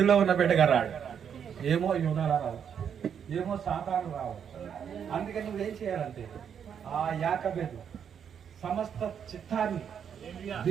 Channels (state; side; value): quieter; left; 7.9 dB